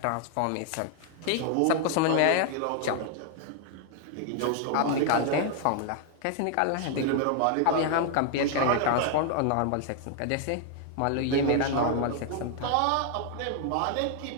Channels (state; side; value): different; both; correlation 0.00